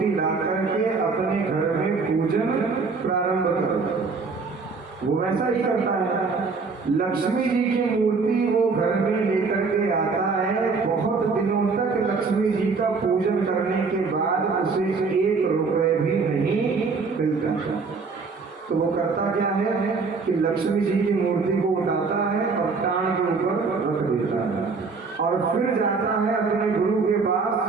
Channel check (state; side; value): quieter; left; 4.6 dB